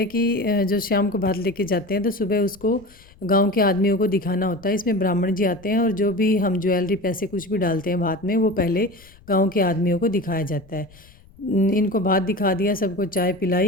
कि जो शाम को भात लेके जाते हैं तो सुबह उसको गांव के आदमियों को दिखाना होता है। इसमें ब्राह्मण जी आते हैं और जो भी हम ज्वेलरी पैसे कुछ भी डालते हैं भात में वो पहले गाँव के आदमियों को दिखाया जाता है। इनको भात दिखा दिया, सबको चाय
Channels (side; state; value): left; noise; rumble, 25 dB below the sound